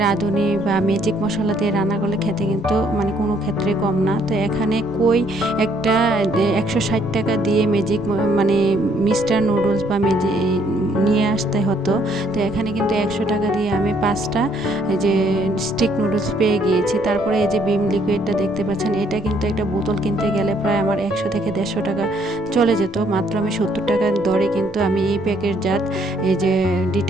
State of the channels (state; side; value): normal; both; correlation 0.67